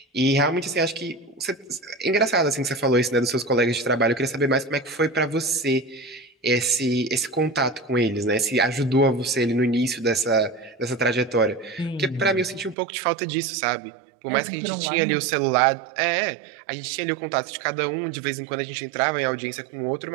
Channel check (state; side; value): drops out; left; at 12.8 s